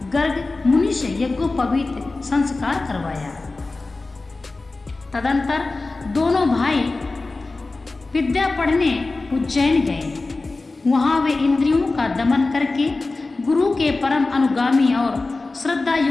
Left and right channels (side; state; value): right; quieter; 3.4 dB